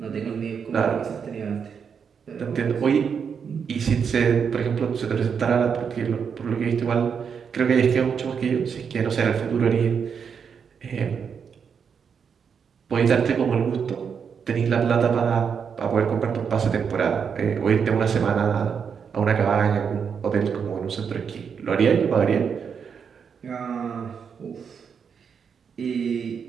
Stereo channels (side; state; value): left; quieter; 6.7 dB